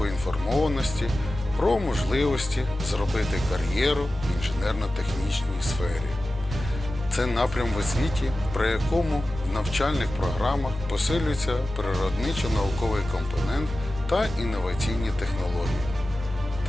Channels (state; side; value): normal; both; correlation 0.95